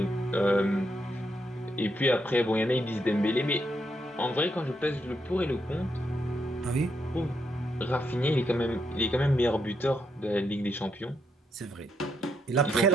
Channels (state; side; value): normal; both; correlation 0.79